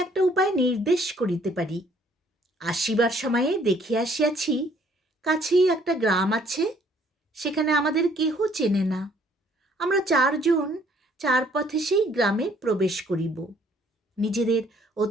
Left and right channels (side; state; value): both; normal; correlation 0.62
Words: একটা উপায় নির্দেশ করিতে পারি। আসিবার সময়ে দেখিয়া আসিয়াছি, কাছেই একটা গ্রাম আছে, সেখানে আমাদের কেহ চেনে না। আমরা চারজন চার পথে সেই গ্রামে প্রবেশ করিব, নিজেদের